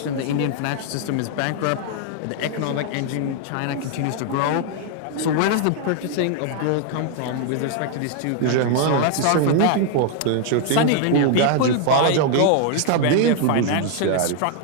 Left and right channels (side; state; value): both; different; correlation 0.00